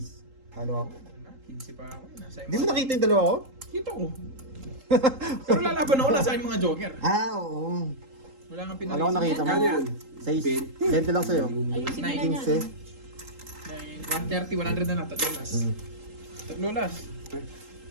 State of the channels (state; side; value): late; left; 3.8 ms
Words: Halo ako. 15 pa ako. Nasa Hindi mo nakita yung dalawa ko? Kita ko. Pero lalaban ako, nasa aking mga joker. Oo. Wala kang Alam ko nakita mo. Kano yan? 6. 20 lang sa'yo. Ayusin mo na Nice. yan. 130, 100 na lang. Tatlo last. Tatlo last.